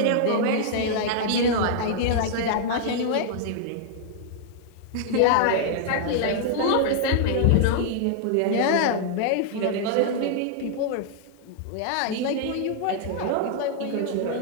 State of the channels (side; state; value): both; different; correlation -0.01